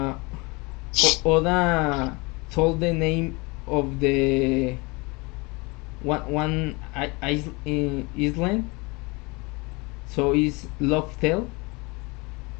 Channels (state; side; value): quieter; right; 26.9 dB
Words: Oda told the name of the one island, so it's Loftel.